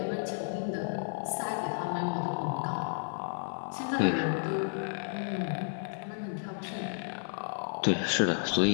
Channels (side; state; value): right; silent; 56 dB below the other